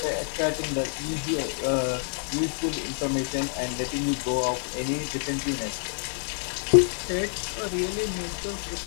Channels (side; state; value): right; silent; 60 dB below the other